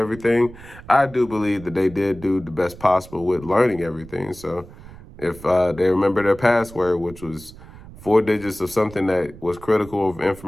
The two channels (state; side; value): noise; right; rumble, 18 dB below the sound